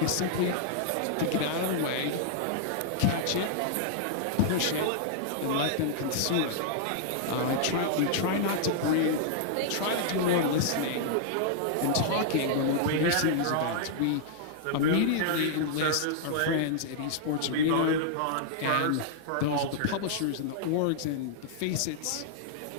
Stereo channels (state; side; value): different; both; correlation -0.01